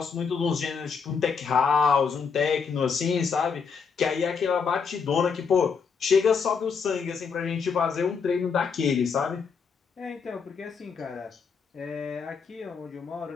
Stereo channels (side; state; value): right; quieter; 5.8 dB